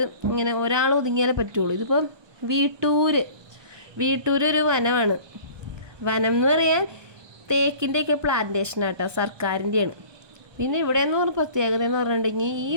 ഇങ്ങനെ ഒരാൾ ഒതുങ്ങിയാലേ പറ്റുള്ളൂ. ഇതിപ്പോൾ വീട്ടൂർ ഒരു വനമാണ്. വനം എന്ന് പറയാൻ തേക്കിൻ്റെയൊക്കെ പ്ലാന്റേഷനാട്ടോ, സർക്കാരിൻ്റെയാണ്. പിന്നെ ഇവിടെ എന്ന് പറഞ്ഞ പ്രത്യേകത എന്ന് പറഞ്ഞിട്ടുണ്ടെങ്കിൽ ഈ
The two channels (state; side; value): late; left; 1.2 ms